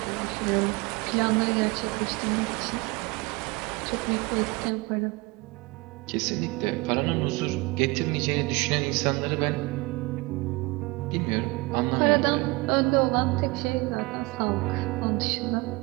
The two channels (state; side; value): quieter; left; 24.1 dB